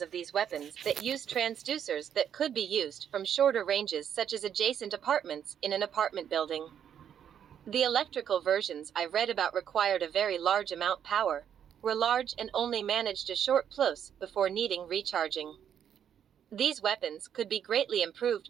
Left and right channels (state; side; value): quieter; left; 9.0 dB